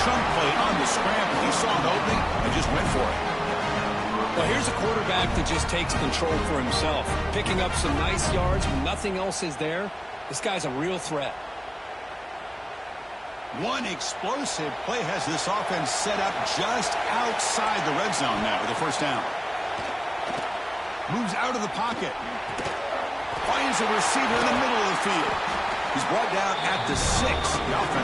chunk play on the scramble. He saw an opening and just went for it. Well, here's a quarterback that just takes control for himself, picking up some nice yards when nothing else is there. This guy's a real threat. One explosive play has this offense set up just outside the red zone now with a first down. Moves out of the pocket. Finds a receiver in the middle of the field. He's brought down at the 6. The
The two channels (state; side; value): identical; both; correlation 1.00